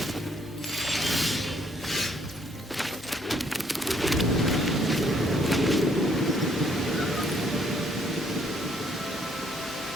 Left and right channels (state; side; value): normal; both; correlation 0.67